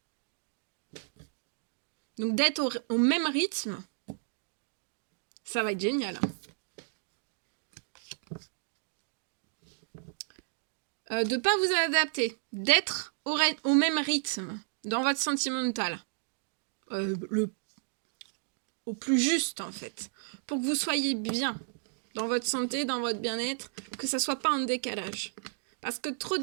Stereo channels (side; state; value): left; silent; digital silence